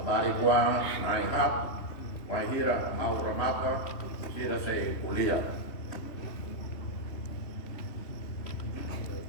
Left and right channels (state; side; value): late; right; 3.1 ms